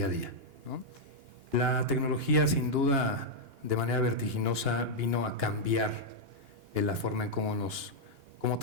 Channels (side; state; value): left; late; 2.9 ms